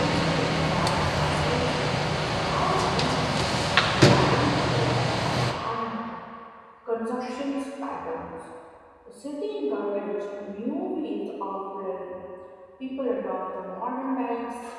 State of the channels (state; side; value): identical; both; correlation 1.00